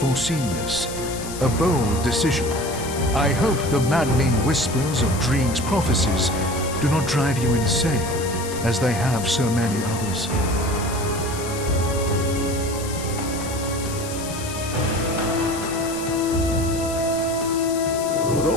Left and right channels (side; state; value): left; noise; hiss, 11 dB below the sound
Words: this. A bold decision. I hope the maddening whispers of Dreeg's prophecies do not drive you insane, as they have so many others. The